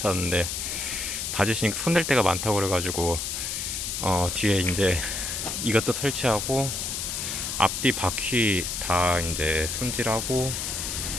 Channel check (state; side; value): noise; left; hiss, 3 dB below the sound